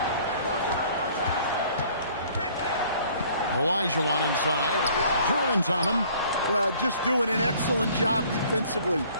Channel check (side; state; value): both; inverted; correlation -0.56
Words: Olajuwon inside. Duran's on him. Well, just doing an excellent job defensively.